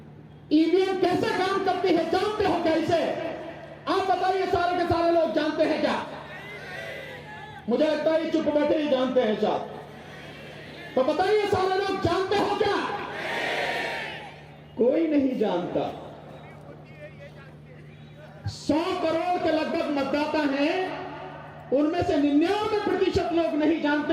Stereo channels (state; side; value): identical; both; correlation 1.00